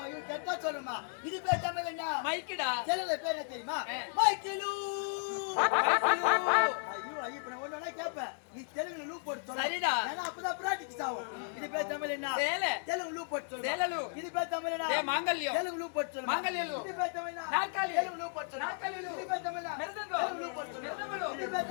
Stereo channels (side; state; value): right; silent; 55 dB below the other